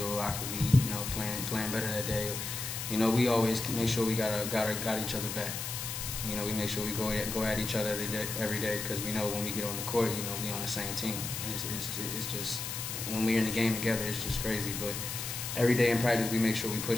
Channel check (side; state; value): left; noise; hiss, 5 dB below the sound